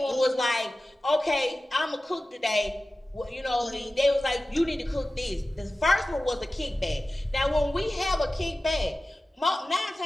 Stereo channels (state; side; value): normal; both; correlation 0.96